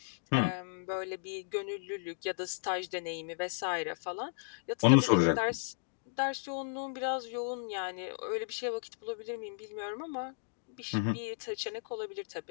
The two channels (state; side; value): silent; right; digital silence